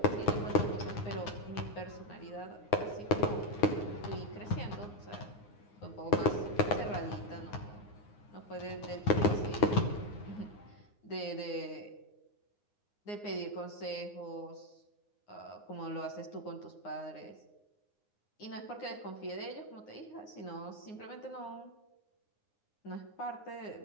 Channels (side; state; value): right; late; 9.7 ms